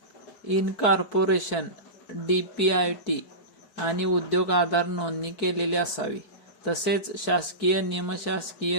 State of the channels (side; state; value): right; late; 4.6 ms